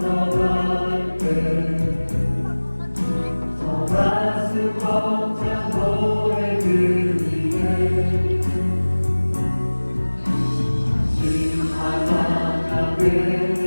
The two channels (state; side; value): inverted; both; correlation -1.00